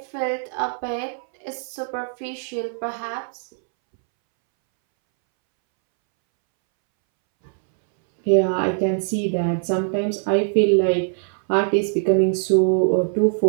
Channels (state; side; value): silent; left; 64 dB below the other